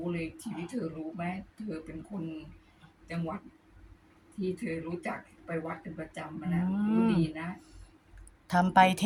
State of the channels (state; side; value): identical; both; correlation 1.00